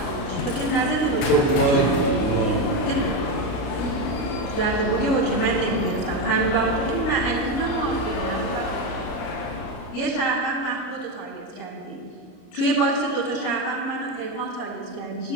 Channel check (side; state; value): right; late; 33 ms